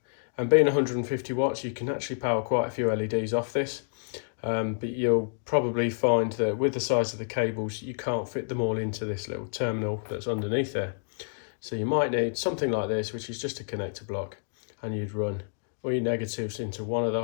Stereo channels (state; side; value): silent; right; digital silence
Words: And being 150 watts you can actually power quite a few LEDs off this. But you'll probably find that with the size of the cables you can't fit them all into this little terminal that's underneath there. So you might need something like this, which is just a connector block, and you'd run all your negatives into one of the